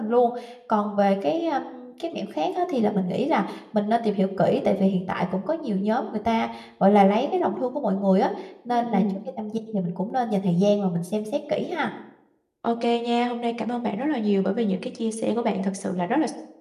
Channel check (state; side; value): identical; both; correlation 1.00